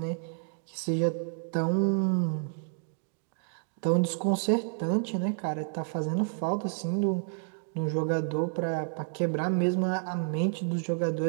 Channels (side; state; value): left; silent; digital silence